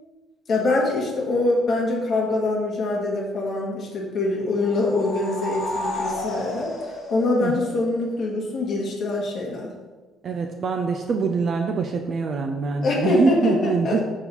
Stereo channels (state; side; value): normal; both; correlation 0.68